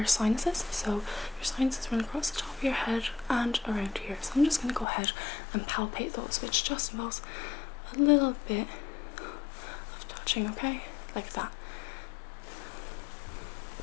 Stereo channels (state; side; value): drops out; right; at 4.9 s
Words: sinuses. So your sinuses run across the top of your head and around here. So I'm just going to go ahead and palpate those, which just involves a little bit of touching, okay? Like that.